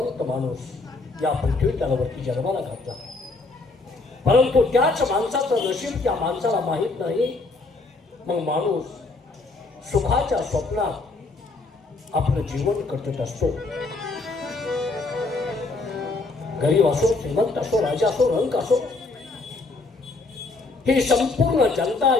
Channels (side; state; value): right; quieter; 3.5 dB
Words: माणूस या पृथ्वी तलावरती जन्माला घातला. परंतु त्याच माणसाचं नशीब त्या माणसाला माहीत नाही. मग माणूस सुखाच्या स्वप्नात आपलं जीवन कटत असतो. गरीब असो, श्रीमंत असो, राजा असो, रंक असो, ही संपूर्ण जनता